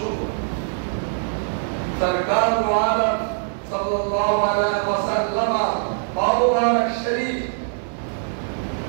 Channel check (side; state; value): left; silent; 58 dB below the other